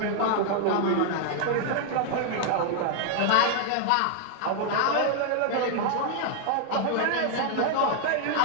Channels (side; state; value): both; different; correlation 0.00